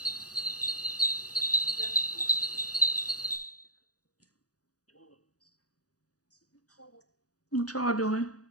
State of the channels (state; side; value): late; right; 0.67 ms